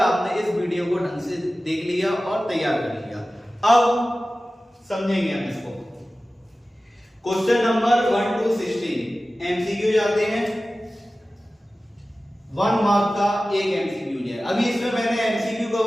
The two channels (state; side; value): normal; both; correlation 0.96